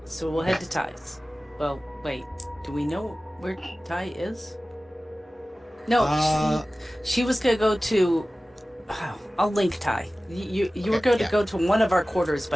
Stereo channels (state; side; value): normal; both; correlation 0.97